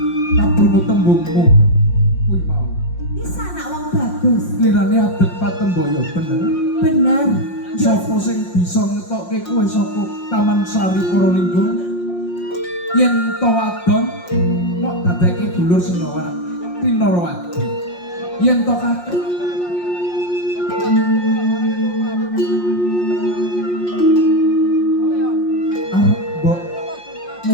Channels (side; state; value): right; late; 5.6 ms